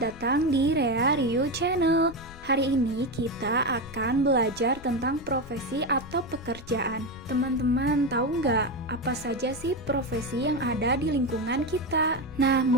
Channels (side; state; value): left; noise; rumble, 17 dB below the sound